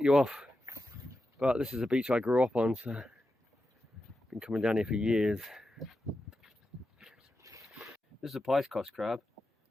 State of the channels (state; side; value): normal; both; correlation 0.90